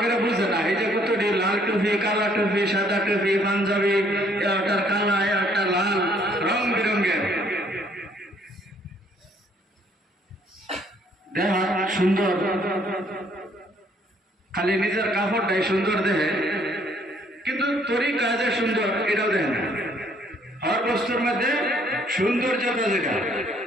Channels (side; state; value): both; normal; correlation 0.64